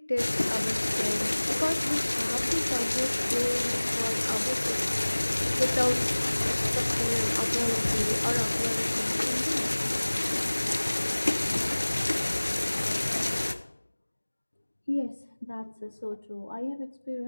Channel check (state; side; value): inverted; both; correlation -1.00